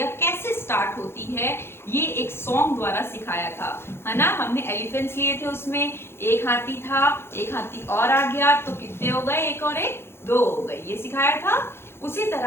कैसे स्टार्ट होती है ये एक सॉन्ग द्वारा सिखाया था, है ना। हमने एलिफेंट्स लिए थे, उसमें एक हाथी था, एक हाथी और आ गया तो कितने हो गए, एक और एक दो हो गए, ये सिखाया था। उसी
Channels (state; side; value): late; right; 0.12 ms